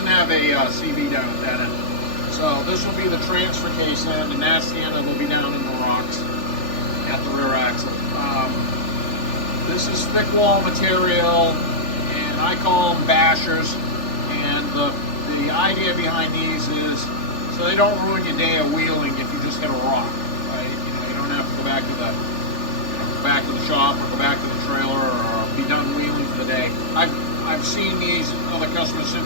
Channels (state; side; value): late; right; 3.4 ms